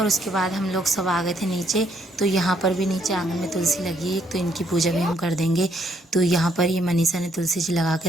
उसके बाद हम लोग सब आ गए थे नीचे। तो यहाँ पर भी नीचे आंगन में तुलसी लगी है, तो इनकी पूजा भी हम कर देंगे। तो यहाँ पर ये मनीषा ने तुलसी जी लगा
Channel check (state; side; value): normal; both; correlation 0.70